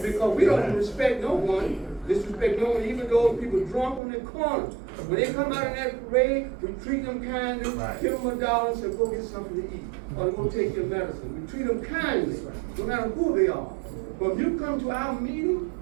Because we don't respect no one, disrespect no one, even those people drunk on the corner. When they come out in that parade, we treat them kindly, give them $1 and say, go get something to eat. Or go take your medicine. We treat them kindly, no matter who they are. But if you come to our meeting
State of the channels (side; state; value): left; drops out; at 4.0 s